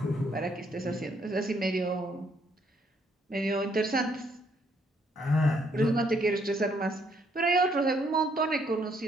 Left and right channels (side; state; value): both; normal; correlation 0.70